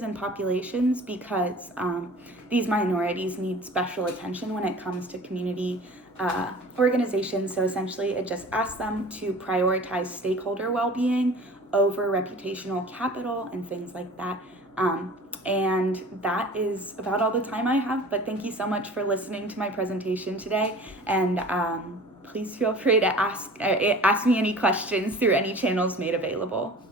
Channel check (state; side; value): normal; both; correlation 0.43